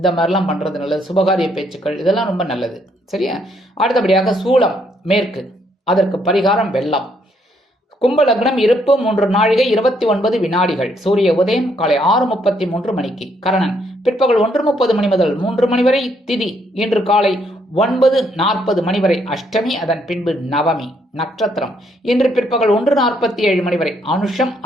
மாதிரிலாம் பண்ணுறது நல்லது. சுபகாரிய பேச்சுக்கள் இதெல்லாம் ரொம்ப நல்லது. சரியா? அடுத்தபடியாக சூலம் மேற்கு, அதற்கு பரிகாரம் வெள்ளம். கும்ப லக்னம், இருப்பு 3 நாழிகை 29 வினாடிகள். சூரிய உதயம் காலை 6:33 மணிக்கு. கரணன் பிற்பகல் 1:30 மணி முதல் 3 மணி வரை. திதி இன்று காலை 9:40 மணி வரை அஷ்டமி, அதன் பின்பு நவமி. நட்சத்திரம் இன்று பிற்பகல் 1:47 மணி வரை அனுஷம்,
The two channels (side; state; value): both; normal; correlation 0.71